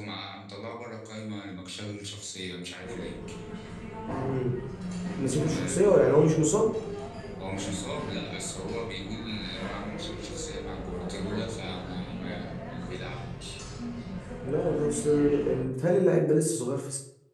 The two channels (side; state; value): both; identical; correlation 1.00